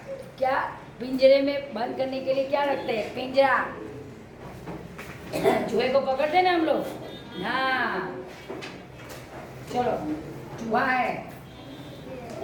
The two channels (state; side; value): identical; both; correlation 1.00